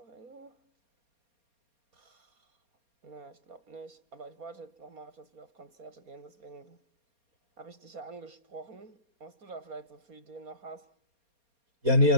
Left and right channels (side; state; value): left; late; 4.3 ms